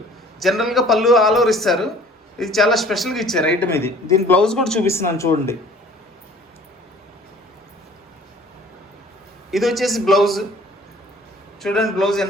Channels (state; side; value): normal; both; correlation 0.51